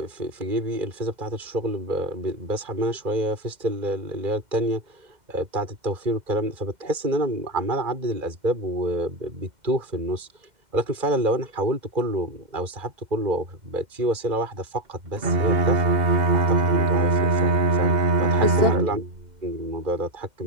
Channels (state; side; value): late; left; 2.1 ms